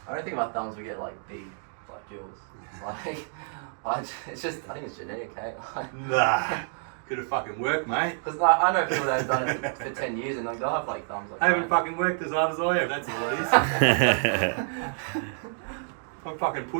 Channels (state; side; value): silent; left; 59 dB below the other